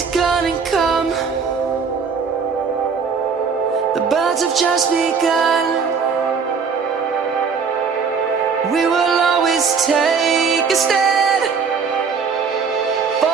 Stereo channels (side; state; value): left; quieter; 5.7 dB